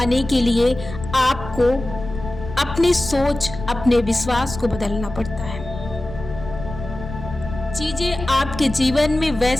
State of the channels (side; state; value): left; noise; rumble, 11 dB below the sound